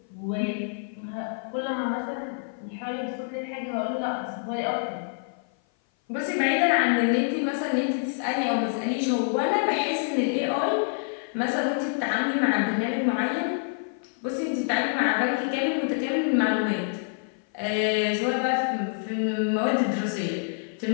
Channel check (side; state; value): right; silent; 56 dB below the other